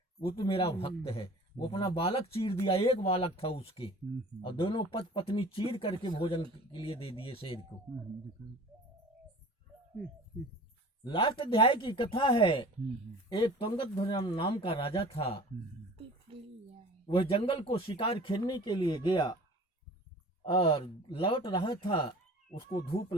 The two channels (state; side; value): normal; both; correlation 0.43